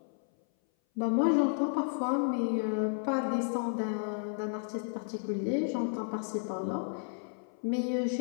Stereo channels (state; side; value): silent; right; 56 dB below the other